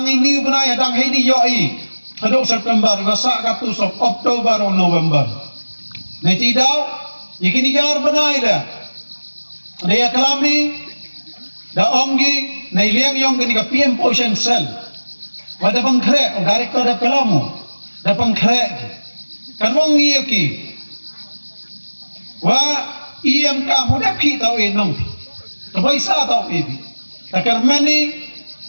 ini banai dang ini yo i hado September wasa ka tu sok October or November na ti daw ikini gar banai la dia kalam ni da omgi na iliang yong gani ka PM Potion Cell wada pangkre o director da kalamu da pangkre kan wong ki wa iem ka mo da ki tau enong to paisa tau ebi takar mani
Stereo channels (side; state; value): both; inverted; correlation -1.00